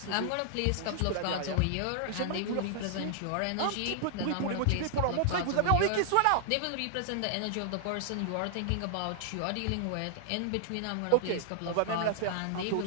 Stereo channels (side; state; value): both; different; correlation -0.01